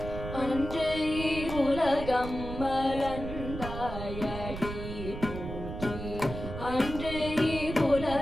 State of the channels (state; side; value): noise; right; rumble, 8 dB below the sound